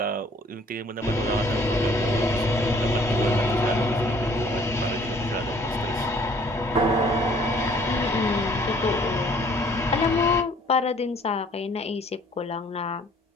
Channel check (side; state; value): both; normal; correlation 0.58